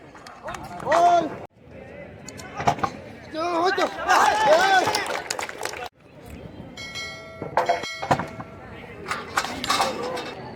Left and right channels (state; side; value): identical; both; correlation 1.00